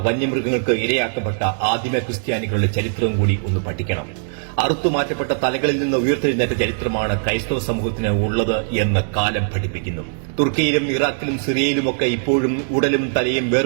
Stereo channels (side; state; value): left; silent; digital silence